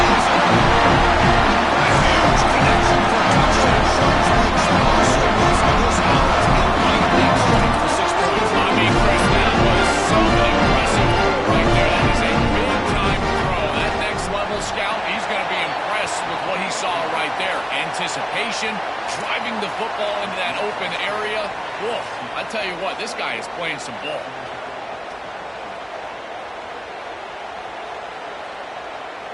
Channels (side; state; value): both; identical; correlation 1.00